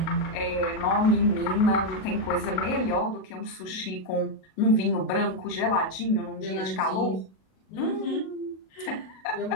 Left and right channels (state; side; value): late; right; 37 ms